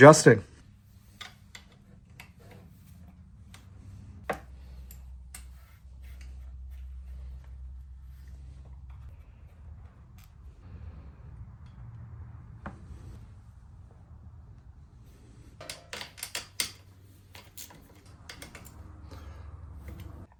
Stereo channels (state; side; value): identical; both; correlation 1.00